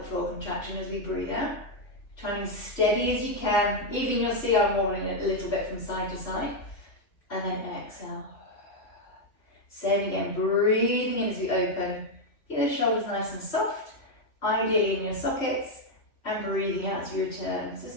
floor contraction as we breathe out. Trying as steady as you can. Even you'll see I'm wobbling it a little bit from side to side. And then exhale. Same again, breathing in as we open. Keep the shoulders nice and soft, ideally in your sockets, and breathing out as you return. So let's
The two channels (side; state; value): right; late; 2.7 ms